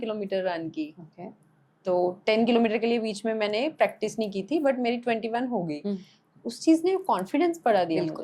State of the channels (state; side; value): identical; both; correlation 1.00